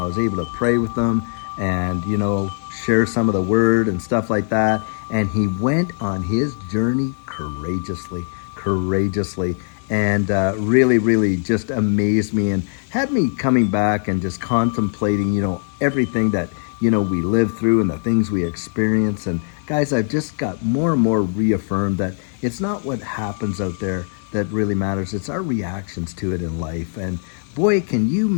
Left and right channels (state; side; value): silent; right; digital silence